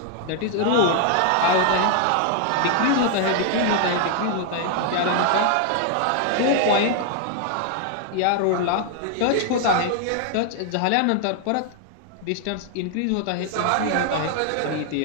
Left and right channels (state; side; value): different; both; correlation 0.00